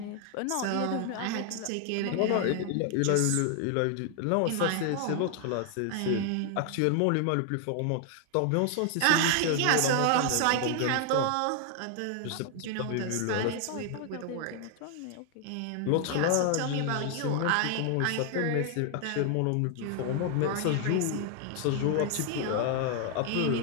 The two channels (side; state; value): both; different; correlation 0.00